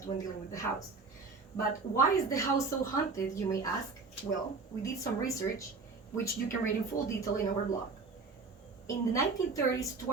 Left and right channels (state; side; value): quieter; left; 4.3 dB